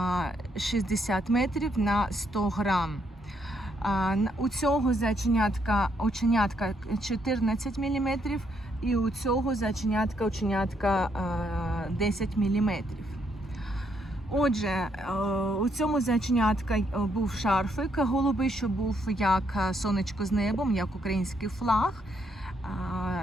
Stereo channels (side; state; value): both; normal; correlation 0.74